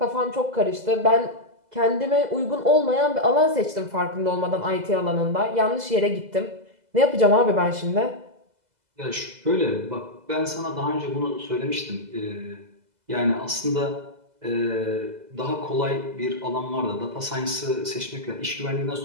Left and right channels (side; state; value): left; late; 2.0 ms